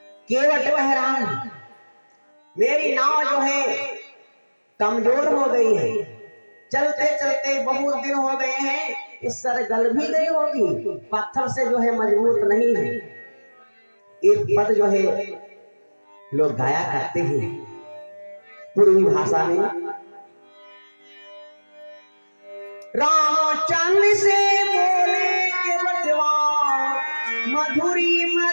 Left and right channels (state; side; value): inverted; both; correlation -1.00